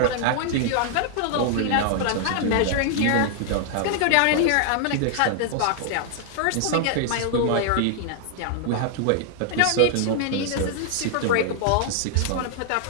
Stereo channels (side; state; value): both; different; correlation -0.01